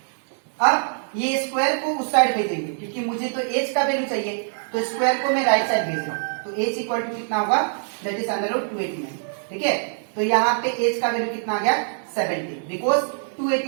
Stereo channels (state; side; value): silent; left; digital silence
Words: अब ये स्क्वायर को उस साइड भेजेंगे क्योंकि मुझे तो एच का वैल्यू चाहिए, तो स्क्वायर को मैं राइट साइड भेज रहा हूं। तो एच इक्वल टू कितना होगा, दैट इज अंडर रूट 289। ठीक है, तो यहाँ पे एच का वैल्यू कितना आ गया 17, बिकॉज